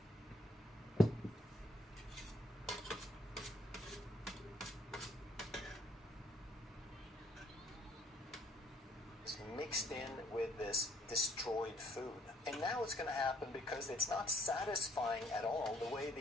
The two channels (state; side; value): normal; both; correlation 0.66